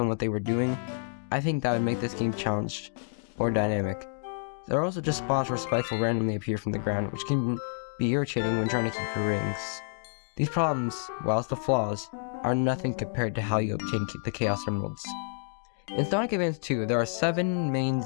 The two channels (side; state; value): right; silent; digital silence